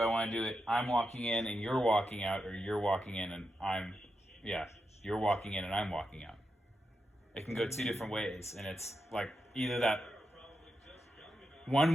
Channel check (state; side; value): normal; both; correlation 0.87